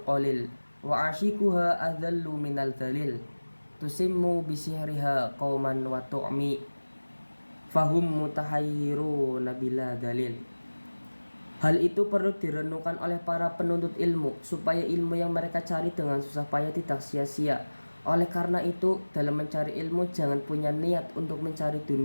qalil wa ashikuha adallu minal dalil tusimmu bisihriha qauman wa tu'mi fahum mutahayyiruna bila dalil. Hal itu perlu direnungkan oleh para penuntut ilmu supaya ilmu yang mereka cari dengan susah payah tidak sia-sia. Oleh karena itu, dalam mencari ilmu jangan punya niat untuk mencari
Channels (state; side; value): inverted; both; correlation -1.00